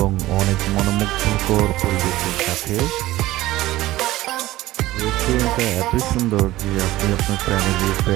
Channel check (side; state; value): left; quieter; 16.7 dB